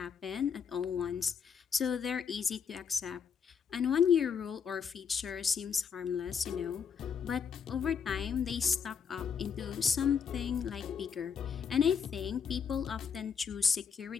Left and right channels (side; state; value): right; quieter; 6.8 dB